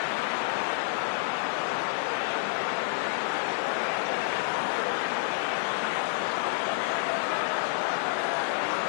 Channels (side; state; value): right; silent; digital silence